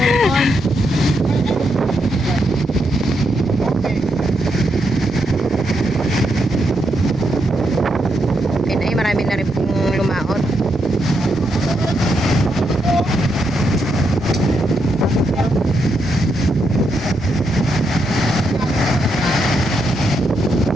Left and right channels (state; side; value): normal; both; correlation 0.80